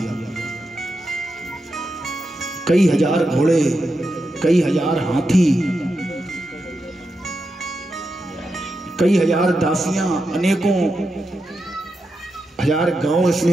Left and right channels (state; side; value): normal; both; correlation 0.87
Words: कई हजार घोड़े, कई हजार हाथी, कई हजार दासियां, अनेकों हजार गांव